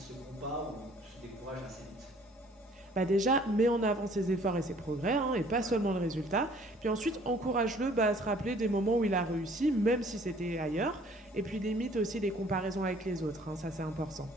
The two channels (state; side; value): normal; both; correlation 0.56